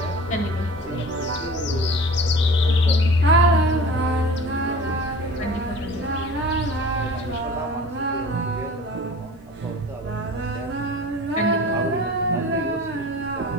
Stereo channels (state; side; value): normal; both; correlation 0.41